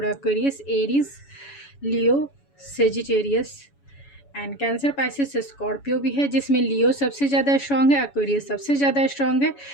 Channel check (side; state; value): right; late; 7.1 ms